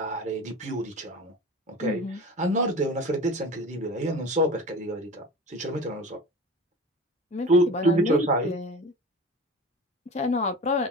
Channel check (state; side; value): normal; both; correlation 0.34